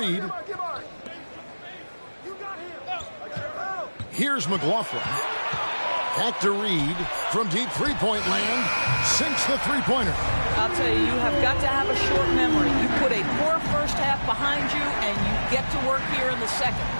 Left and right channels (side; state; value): both; inverted; correlation -1.00